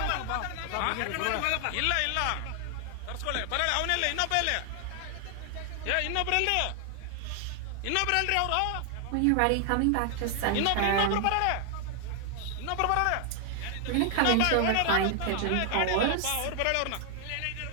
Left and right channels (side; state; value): both; different; correlation 0.00